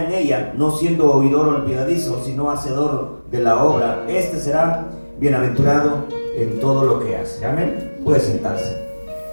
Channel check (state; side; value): inverted; both; correlation -1.00